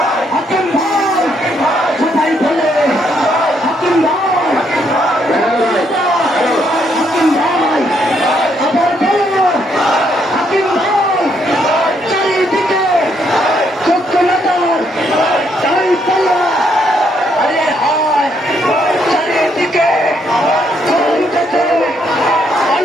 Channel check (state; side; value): normal; both; correlation 0.73